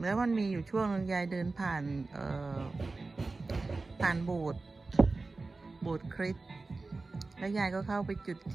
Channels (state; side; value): quieter; left; 3.6 dB